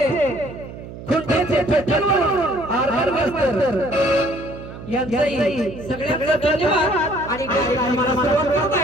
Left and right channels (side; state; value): right; noise; hum, 13 dB below the sound